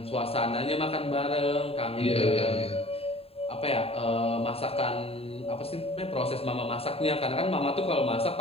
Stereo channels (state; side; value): late; right; 0.28 ms